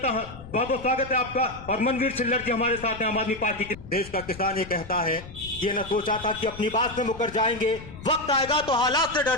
बहुत बहुत स्वागत है आपका, और मनवीर छिल्लर जी हमारे साथ हैं आम आदमी पार्टी के। देश का किसान ये कहता है, ये न सोचा था कि अपनी बात से मुकर जाएंगे, वक्त आएगा तो हालात से डर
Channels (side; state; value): left; noise; rumble, 15 dB below the sound